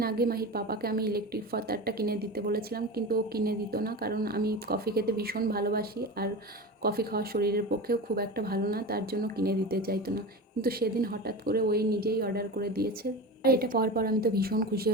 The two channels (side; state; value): both; normal; correlation 0.27